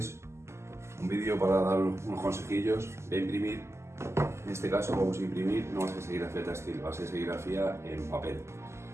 Un vídeo para dar unos consejillos de imprimir. En este caso vamos a imprimir, no va a ser serigrafía textil, va a ser serigrafía en papel,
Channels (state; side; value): late; left; 0.13 ms